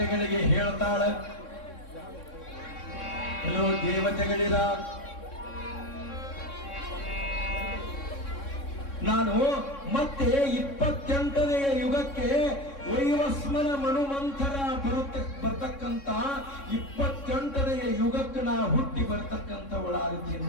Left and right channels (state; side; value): late; right; 3.6 ms